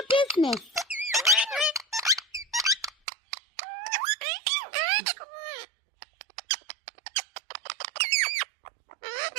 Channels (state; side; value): drops out; left; at 2.9 s